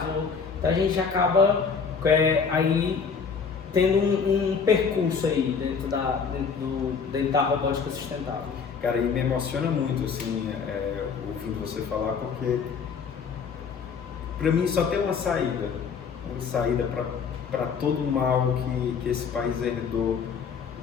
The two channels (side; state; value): right; quieter; 5.9 dB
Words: então a gente acaba aí tendo um percurso aí dentro da robótica sustentável. Cara, e me emociona muito, assim, ouvindo você falar, porque para mim só tem uma saída para todo o mal que esse país herdou,